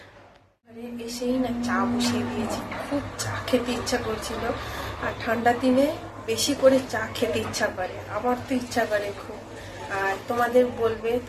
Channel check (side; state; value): both; identical; correlation 1.00